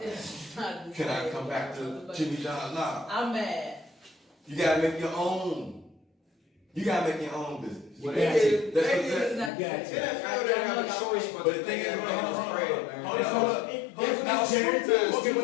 It's not the Can I same. come back to Jimmy John? Nah. I'm mad. You gotta make your own. You gotta make your own business. Well, Yeah. they That's did. It's not the got same. it. NFL didn't have a choice but But to the thing think is, it hold on, spread, man. hold on. Now, guaranteed. okay,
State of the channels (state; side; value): drops out; right; at 9.5 s